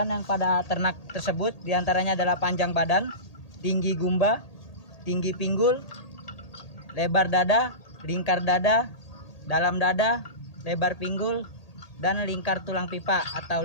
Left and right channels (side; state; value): right; late; 1.8 ms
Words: yang pada ternak tersebut, diantaranya adalah panjang badan, tinggi gumba, tinggi pinggul, lebar dada, lingkar dada, dalam dada, lebar pinggul, dan lingkar tulang pipa